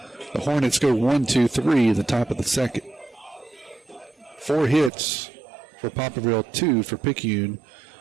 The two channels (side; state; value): left; drops out; at 4.9 s